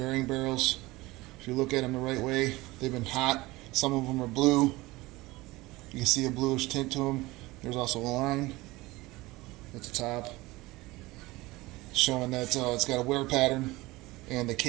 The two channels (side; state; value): left; quieter; 20.5 dB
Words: barrels, if you look at them the right way, they've been hot. Some of them are blue. You can see a bluish tint to them. There's also a line at the top showing that it's got a wear pattern, and the